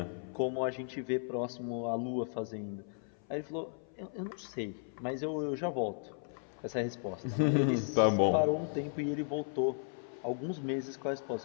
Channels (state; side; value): silent; right; 54 dB below the other